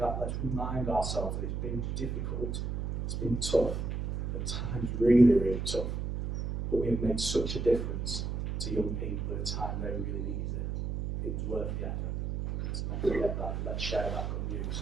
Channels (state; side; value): noise; right; hum, 2 dB below the sound